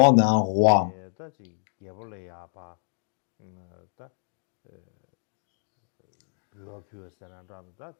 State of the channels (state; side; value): silent; right; digital silence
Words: à un roi.